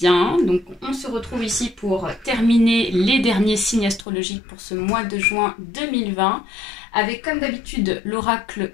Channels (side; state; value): right; drops out; at 4.0 s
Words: Donc on se retrouve ici pour terminer les derniers signes astrologiques pour ce mois de juin 2020 avec comme d'habitude l'oracle